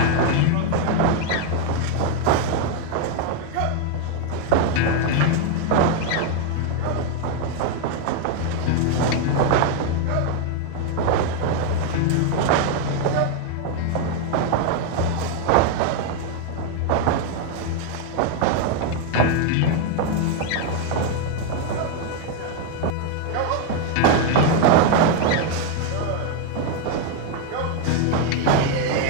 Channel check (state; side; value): different; both; correlation 0.01